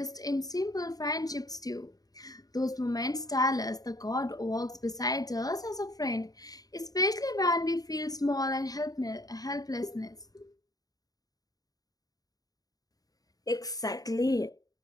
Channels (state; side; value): late; right; 0.18 ms